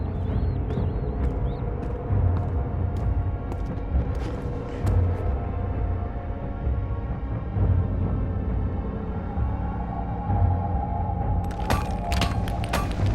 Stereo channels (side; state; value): both; identical; correlation 1.00